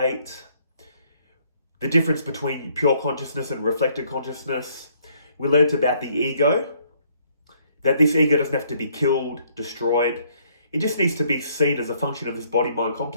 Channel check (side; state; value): both; inverted; correlation -0.66